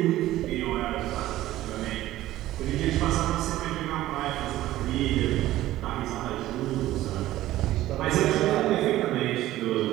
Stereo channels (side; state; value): left; quieter; 15.1 dB